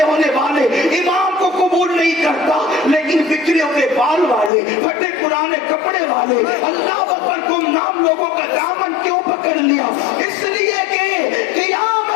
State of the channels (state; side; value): drops out; right; at 4.5 s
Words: होने वाले इमाम को कबूल नहीं करता, लेकिन बिखरे हुए बाल वाले, फटे पुराने कपड़े वाले, अल्लाह अकबर गुमनाम लोगों का दामन क्यों पकड़ लिया? इसलिए कि